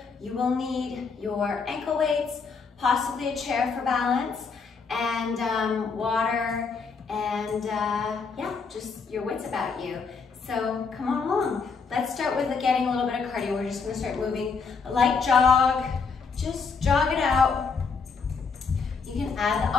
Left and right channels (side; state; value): right; quieter; 5.1 dB